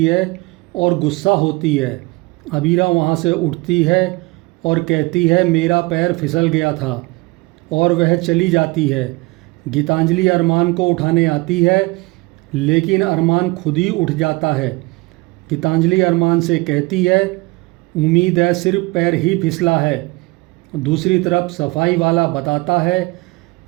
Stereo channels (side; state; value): left; quieter; 24.7 dB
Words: है और गुस्सा होती है। अबीरा वहाँ से उठती है और कहती है मेरा पैर फिसल गया था, और वह चली जाती है। गीतांजलि अरमान को उठाने आती है, लेकिन अरमान खुद ही उठ जाता है। गीतांजलि अरमान से कहती है उम्मीद है सिर्फ पैर ही फिसला है। दूसरी तरफ सफाई वाला बताता है